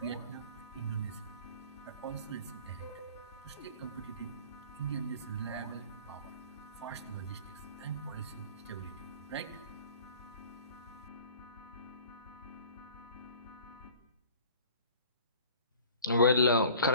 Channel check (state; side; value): inverted; both; correlation -0.46